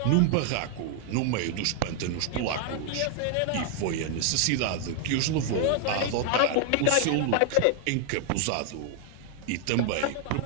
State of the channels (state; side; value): different; both; correlation 0.00